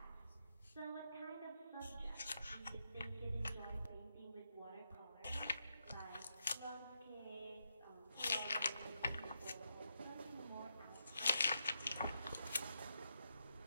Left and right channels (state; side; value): inverted; both; correlation -0.82